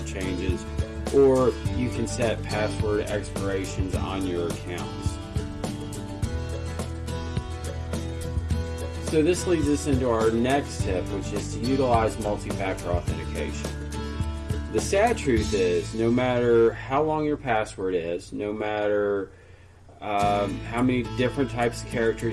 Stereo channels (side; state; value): both; identical; correlation 1.00